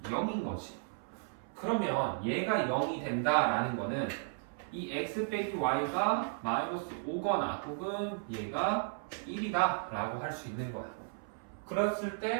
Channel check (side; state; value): left; silent; 55 dB below the other